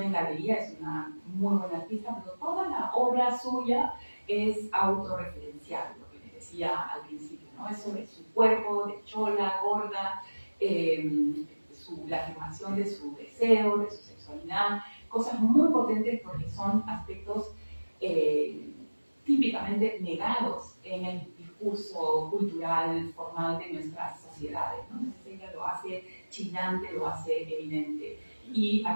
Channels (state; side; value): inverted; both; correlation -1.00